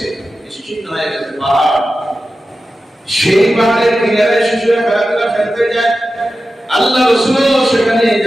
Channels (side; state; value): both; normal; correlation 0.93